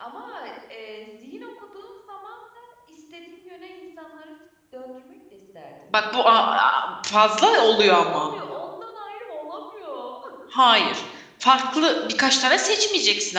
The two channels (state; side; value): identical; both; correlation 1.00